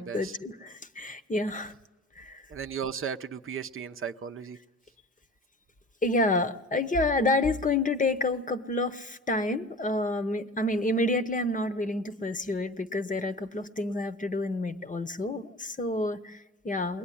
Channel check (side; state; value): both; normal; correlation 0.38